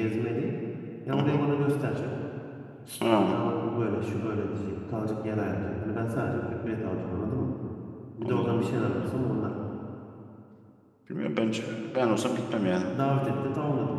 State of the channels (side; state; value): both; identical; correlation 1.00